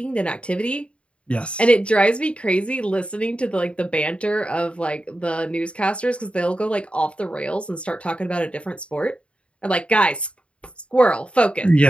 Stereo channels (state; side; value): late; right; 0.059 ms